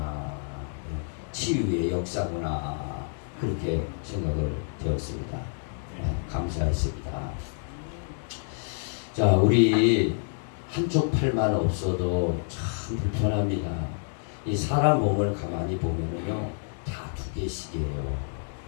치유의 역사구나, 그렇게 생각을 되었습니다. 감사했습니다. 자, 우리 한쪽 팔만 없어도 참 불편합니다. 이 사람 몸을 가만히 보면은요, 다 2개씩이에요.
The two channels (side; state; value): right; silent; digital silence